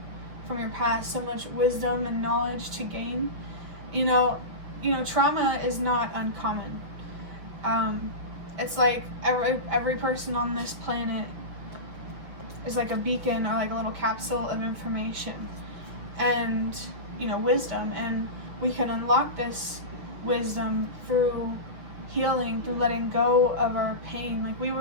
from your past, so much wisdom and knowledge to gain. Trauma is not uncommon. It's like every person on this planet is like a beacon or like a little capsule of information and wisdom, and we can unlock this wisdom through healing, through letting go of our pain.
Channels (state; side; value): late; left; 6.1 ms